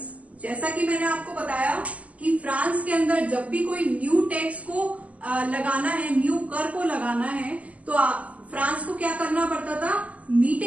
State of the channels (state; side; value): late; left; 0.070 ms